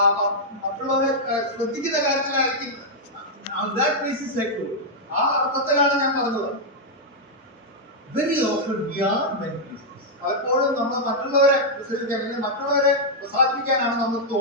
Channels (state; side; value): normal; both; correlation -0.05